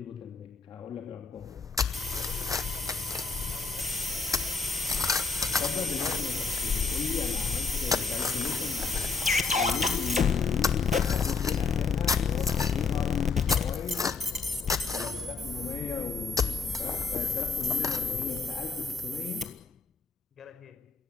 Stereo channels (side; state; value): right; quieter; 4.7 dB